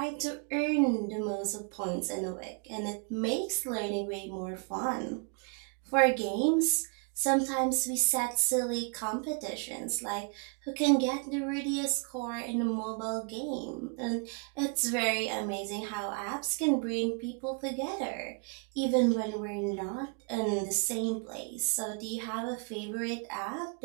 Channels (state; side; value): quieter; left; 37.2 dB